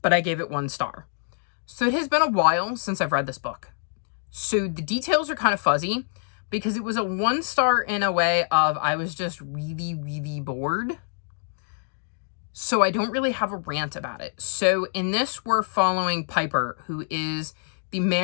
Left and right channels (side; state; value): right; silent; digital silence